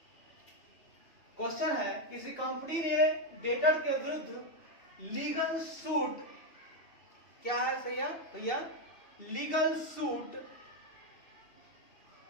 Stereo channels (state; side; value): late; right; 2.6 ms